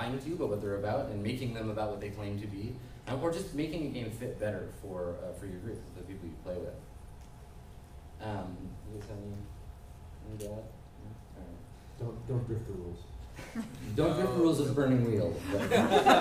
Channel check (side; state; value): both; identical; correlation 1.00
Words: to you about what they're about and making them about what they claim to be, or just making a game fit better for your group, the people you play with. Any doubt? Don't drift the rules. Don't drift the rules of Burning Wheel.